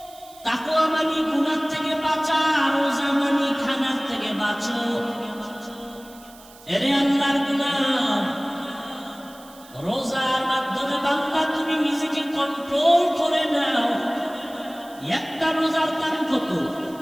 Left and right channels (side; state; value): right; noise; hiss, 22 dB below the sound